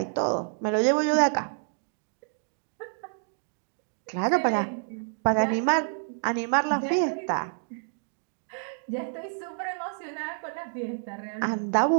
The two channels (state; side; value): silent; left; digital silence